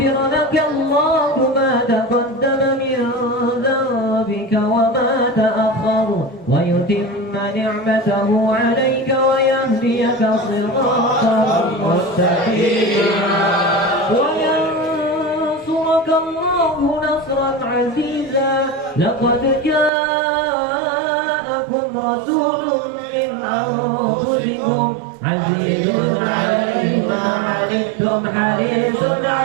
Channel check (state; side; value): drops out; left; at 19.9 s